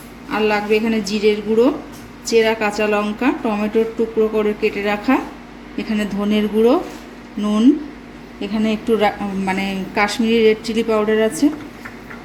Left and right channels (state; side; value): identical; both; correlation 1.00